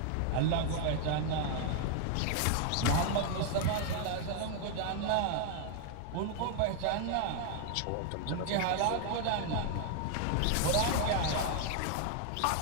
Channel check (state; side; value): different; both; correlation 0.00